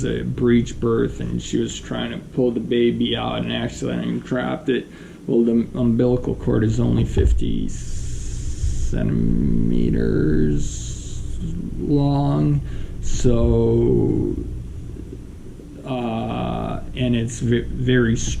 a breech birth and she was trying to pull the baby out and accidentally dropped it. Well, the umbilical cord is only 50 centimeters long, so and it's very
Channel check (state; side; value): identical; both; correlation 1.00